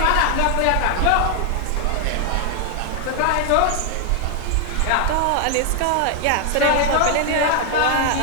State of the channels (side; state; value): both; different; correlation 0.00